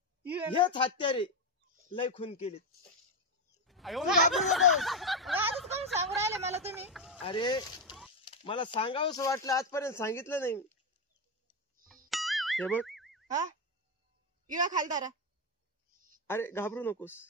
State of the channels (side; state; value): both; normal; correlation 0.09